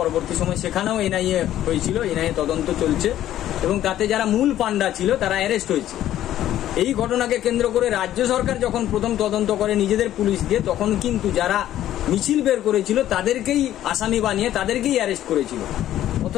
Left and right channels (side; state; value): right; quieter; 12.5 dB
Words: সময় সেখানেও এনআইএ হয়েছিল, এনআইএ তদন্ত চলছে এবং তাতে যারা মূল পান্ডা ছিল তারা অ্যারেস্ট হয়েছে। এই ঘটনাকে কেন্দ্র করে রাজ্য সরকার যখন প্রথম তদন্ত করে নিজেদের পুলিশ দিয়ে, তখন কিন্তু যারা মিছিল বের করেছিল তাদেরকেই আসামি বানিয়ে তাদেরকেই অ্যারেস্ট করেছিল।